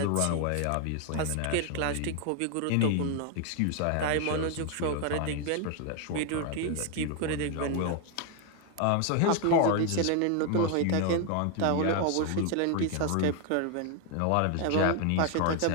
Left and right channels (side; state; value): both; different; correlation 0.00